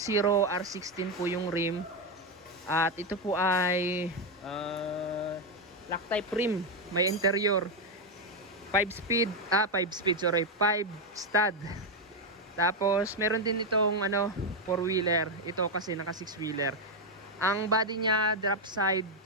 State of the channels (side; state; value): both; normal; correlation 0.05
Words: R16 po yung rim. At ito po ay lock type rim, may interior. 5 stud. Tapos meron din itong 4-wheeler. Ito kasi naka 6-wheeler. Ang body niya drop side,